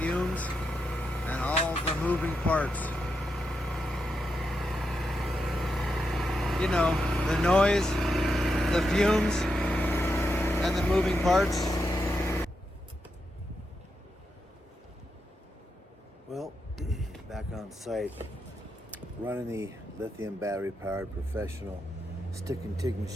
and all the moving parts. You know, the noise, the fumes, and the moving parts. Well, back on site, running the lithium battery powered professional stick and TIG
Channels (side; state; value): both; normal; correlation 0.85